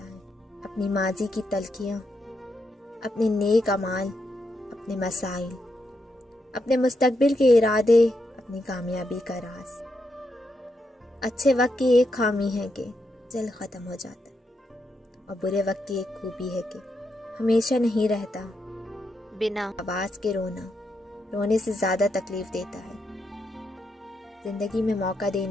اپنی ماضی کی تلخیاں، اپنے نیک اعمال، اپنے مسائل، اپنے مستقبل کے ارادے، اپنی کامیابی کا راز۔ اچھے وقت کی ایک خامی ہے کہ جلد ختم ہو جاتا ہے، اور برے وقت کی ایک خوبی ہے کہ ہمیشہ نہیں رہتا۔ بنا آواز کے رونا رونے سے زیادہ تکلیف دیتا ہے۔ زندگی میں موقع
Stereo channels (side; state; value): both; normal; correlation 0.82